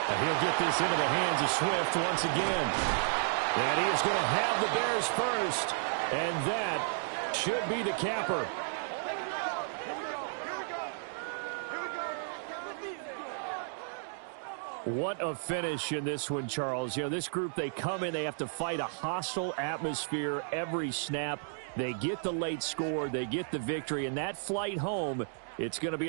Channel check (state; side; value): silent; left; digital silence